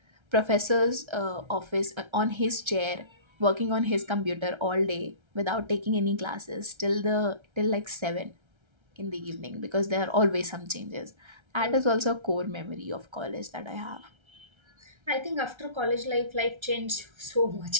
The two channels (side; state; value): left; late; 1.3 ms